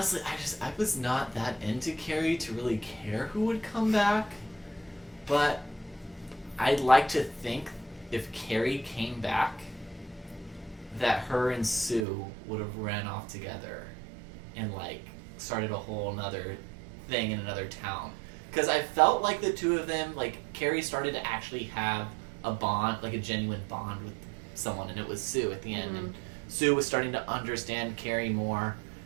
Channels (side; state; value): left; drops out; at 12.1 s